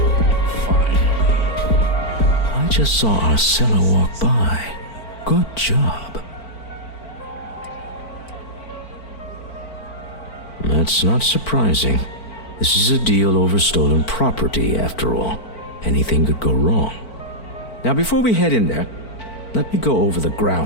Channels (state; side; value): late; right; 4.5 ms